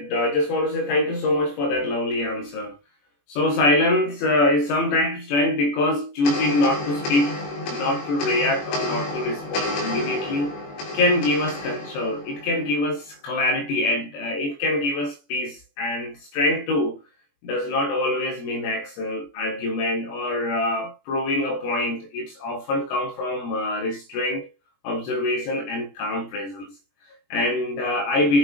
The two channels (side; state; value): right; late; 21 ms